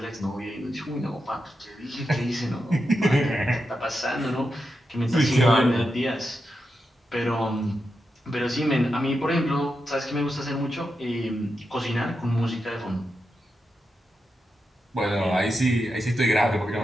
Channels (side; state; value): both; normal; correlation 0.87